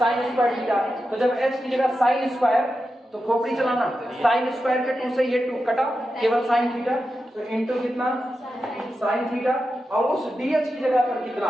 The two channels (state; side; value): normal; both; correlation 0.90